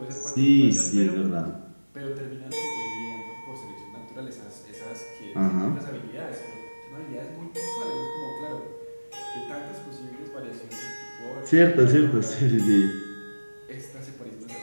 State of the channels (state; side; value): inverted; both; correlation -1.00